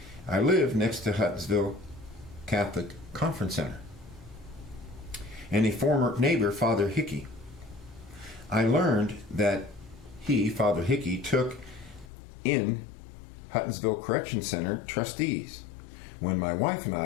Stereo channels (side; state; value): right; drops out; at 12.1 s